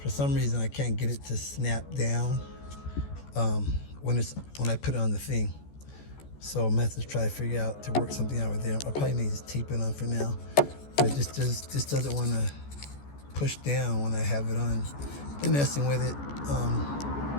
some reason, I can't get it to snap down when I put it on the thing. So I'm going to have to try to figure out to work something out with there. I'll probably need to tape it on for now, but it just doesn't want to push down when I have it on. Been messing with it,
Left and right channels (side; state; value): right; late; 14 ms